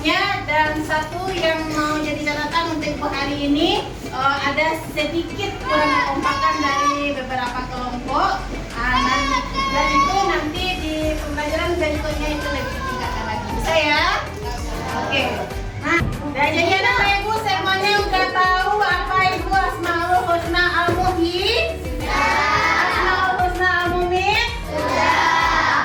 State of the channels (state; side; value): identical; both; correlation 1.00